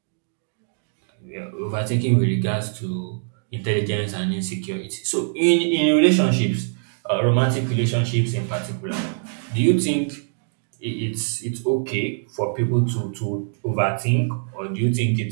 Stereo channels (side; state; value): left; silent; digital silence